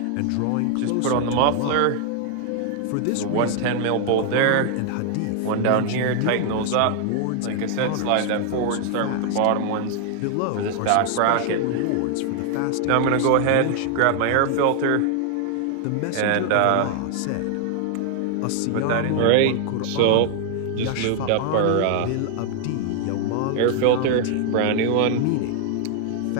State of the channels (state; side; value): different; both; correlation 0.00